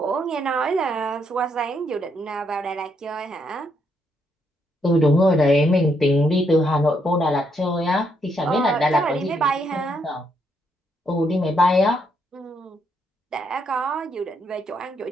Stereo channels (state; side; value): normal; both; correlation 0.75